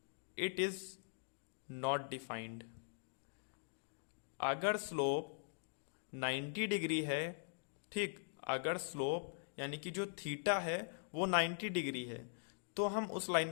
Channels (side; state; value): right; silent; digital silence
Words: it is not defined। अगर स्लोप 90 डिग्री है, ठीक, अगर स्लोप यानी कि जो थीटा है वो 90 डिग्री है, तो हम उस लाइन